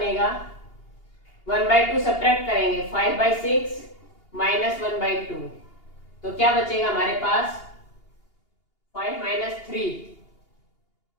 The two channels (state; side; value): late; right; 2.8 ms